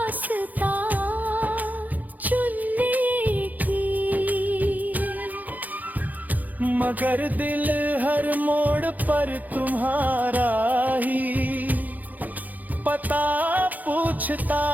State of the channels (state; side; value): late; left; 0.081 ms